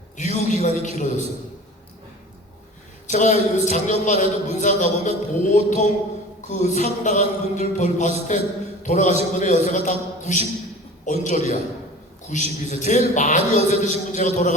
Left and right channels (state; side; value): normal; both; correlation 0.40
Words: 유효기간이 길어졌어요. 제가 작년만 해도 문상 가보면 보통 그 상당한 분들 봤을 때 돌아가신 분의 연세가 다 90 언저리야. 92세. 제일 많이 연세 드신 분 제가